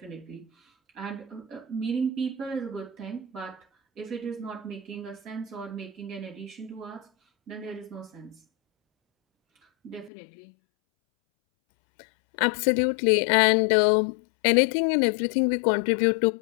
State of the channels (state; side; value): drops out; right; at 10.1 s